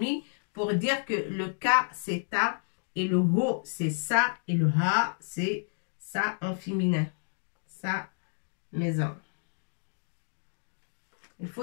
pour dire que le ka c'est ta et le ho c'est ça et le ha c'est ça en féminin. Sa maison. Il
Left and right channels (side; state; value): right; silent; digital silence